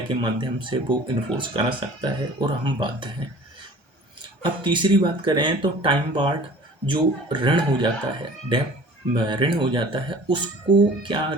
के माध्यम से वो इन्फोर्स करा सकता है और हम बाध्य हैं। अब तीसरी बात करें तो टाइम बार्ड जो ऋण हो जाता है, डेब्ट ऋण हो जाता है, उसको क्या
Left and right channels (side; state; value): left; late; 1.3 ms